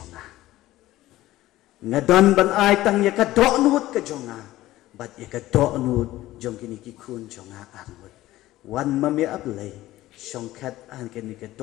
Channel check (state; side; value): quieter; right; 15.9 dB